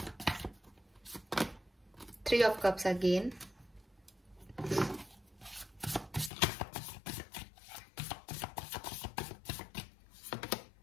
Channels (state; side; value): drops out; right; at 6.3 s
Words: Three of Cups again.